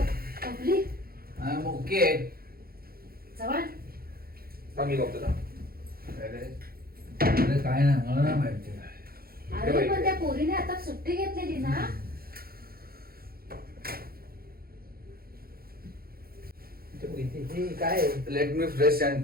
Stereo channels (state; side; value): late; left; 0.44 ms